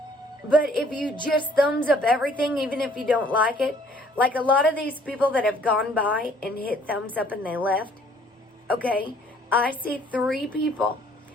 But if you just thumbs up everything, even if you don't like it, like a lot of these people that have gone by and hit thumbs up and they left, okay, I see 3 people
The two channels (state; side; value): normal; both; correlation 0.59